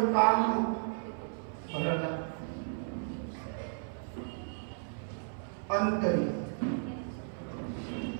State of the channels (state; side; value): silent; left; 55 dB below the other